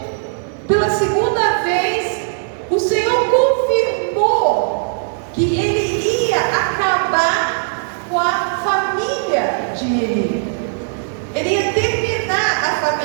pela segunda vez, o Senhor confirmou que ele ia acabar com a família de Eli. Ele ia terminar a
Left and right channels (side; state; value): left; silent; digital silence